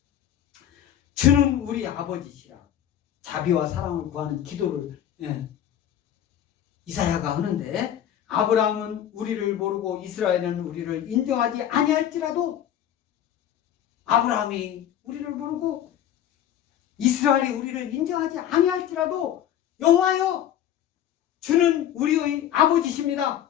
주는 우리 아버지시라. 자비와 사랑을 구하는 기도를 이사야가 하는데, 아브라함은 우리를 모르고 이스라엘은 우리를 인정하지 아니할지라도, 아브라함이 우리를 모르고 이스라엘이 우리를 인정하지 아니할지라도 여호와여 주는 우리의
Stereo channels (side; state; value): right; quieter; 10.7 dB